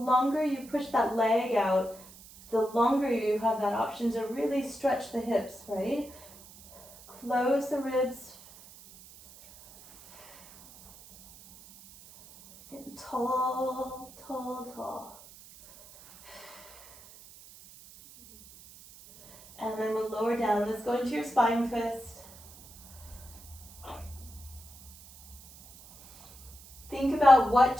you push that leg out, the longer you have that option to really stretch the hips, right? Close the ribs. Getting tall, tall, tall. And then we'll lower down. Let's go into your spine twist. Think about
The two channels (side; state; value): right; noise; hiss, 20 dB below the sound